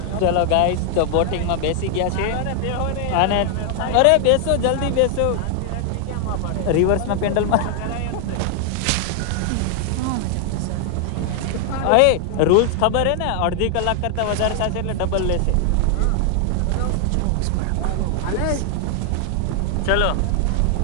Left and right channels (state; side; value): different; both; correlation 0.00